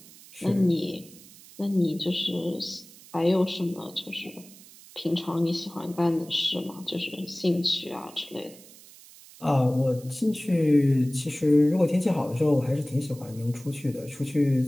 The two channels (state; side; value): noise; right; hiss, 21 dB below the sound